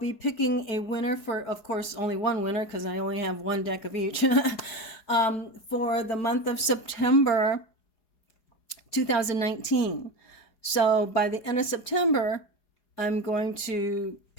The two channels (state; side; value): late; right; 4.8 ms